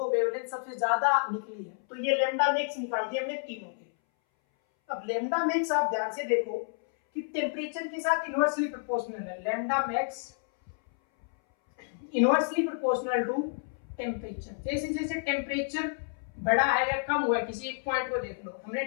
वेवलेंथ सबसे ज्यादा निकली है, तो ये लैम्डा मैक्स निकाल दिए हमने तीनों के। अब लैम्डा मैक्स आप ध्यान से देखो कि टेम्परेचर के साथ इनवर्सली प्रोपोर्शनल है। Lambda max inversely proportional to temperature. जैसे जैसे टेम्परेचर बढ़ा है या कम हुआ है, किसी एक पॉइंट को देख लो, हमने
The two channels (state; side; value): silent; right; 58 dB below the other